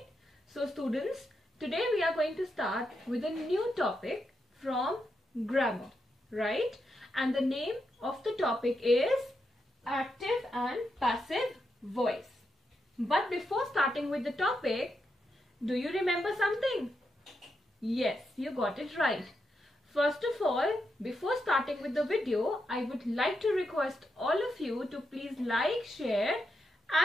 So students, today we are going to start with a new topic from grammar. Right? And the name of the topic is active and passive voice. But before starting with the topic, do you remember something? Yes, you got it right. First of all, before starting with the video, I would like to request all of you to please like, share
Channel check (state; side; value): normal; both; correlation 0.84